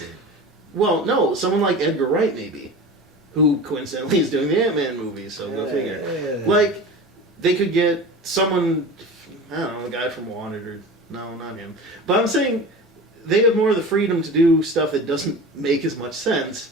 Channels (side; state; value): both; normal; correlation 0.33